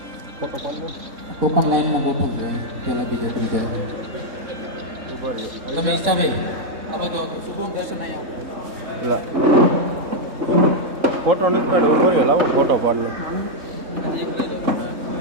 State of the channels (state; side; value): late; left; 3.6 ms